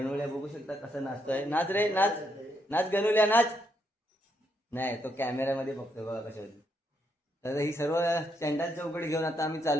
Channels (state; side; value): normal; both; correlation 0.77